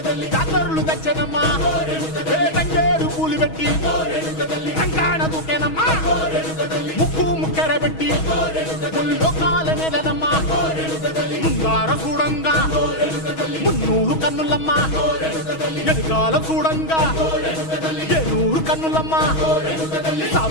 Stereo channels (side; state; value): right; late; 6.3 ms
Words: జాతరులు తెచ్చనమ్మా తంగేరు పూలు పెట్టి రంగాణ దూకేనమ్మా ముక్కు ముక్కెర పెట్టి ముల్లోకాల నెలనమ్మా ముందార చూడంగా మున్నూరు కన్నులమ్మా ఎనకాల చూడంగా ఏనూరు కన్నులమ్మా